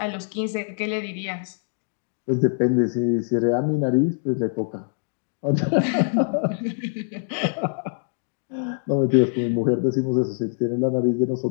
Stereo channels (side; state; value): right; silent; digital silence